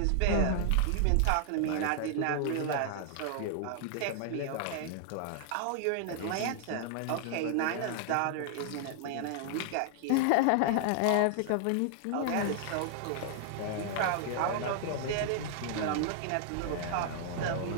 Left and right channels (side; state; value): both; different; correlation 0.00